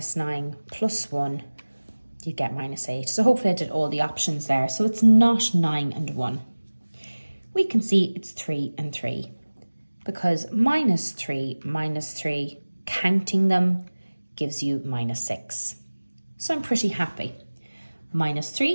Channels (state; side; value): inverted; both; correlation -1.00